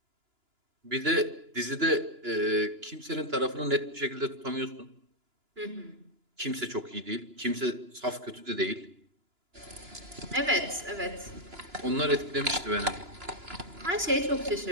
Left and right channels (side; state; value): left; late; 2.9 ms